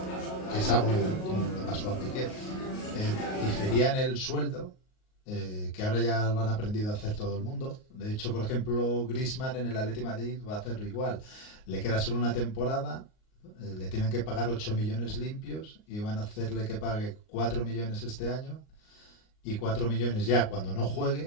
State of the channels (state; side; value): late; right; 38 ms